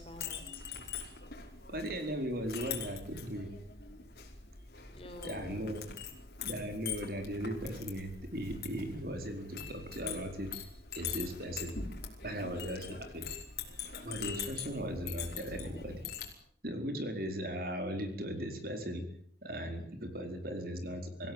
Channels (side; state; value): both; normal; correlation 0.43